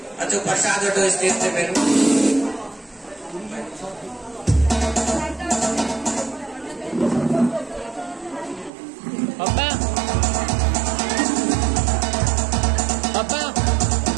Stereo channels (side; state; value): left; drops out; at 8.7 s